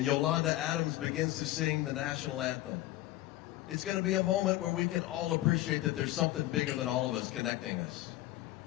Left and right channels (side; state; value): right; quieter; 16.2 dB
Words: Yolanda Adams begins to sing the national anthem. It's going to be a moment where we can all appreciate that there's something bigger than all of us connecting us.